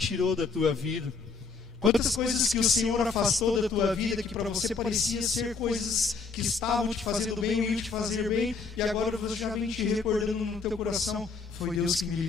da tua vida, quantas coisas que o Senhor afastou da tua vida, que para você parecia ser coisas que estavam te fazendo bem, ou iam te fazer bem, e agora você já vem te recordando no teu coração: foi Deus que me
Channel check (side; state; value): right; quieter; 4.6 dB